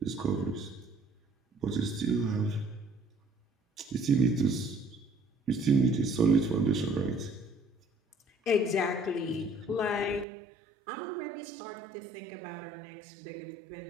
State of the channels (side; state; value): left; drops out; at 10.2 s